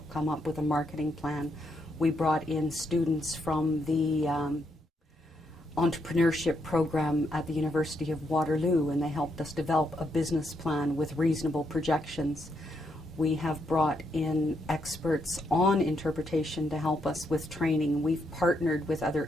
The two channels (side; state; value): both; normal; correlation 0.79